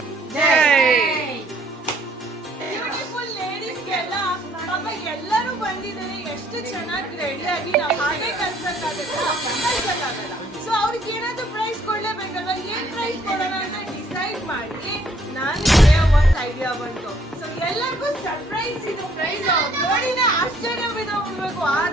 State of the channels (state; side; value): normal; both; correlation 0.64